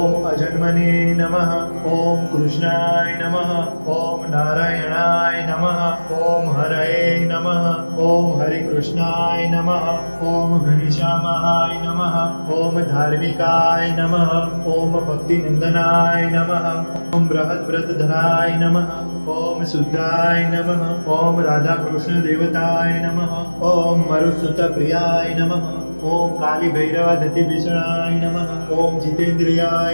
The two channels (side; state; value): both; inverted; correlation -1.00